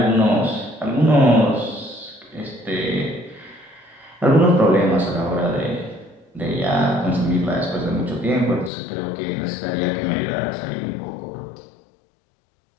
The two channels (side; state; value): right; drops out; at 8.7 s